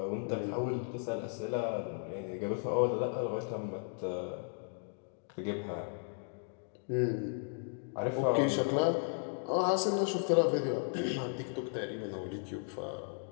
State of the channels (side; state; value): right; silent; 54 dB below the other